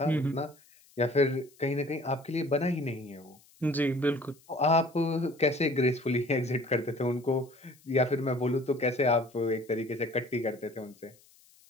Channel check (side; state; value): left; noise; hiss, 29 dB below the sound